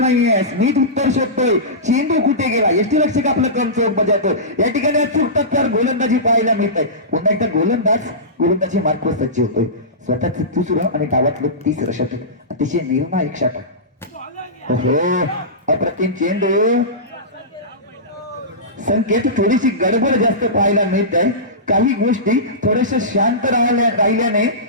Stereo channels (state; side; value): normal; both; correlation -0.19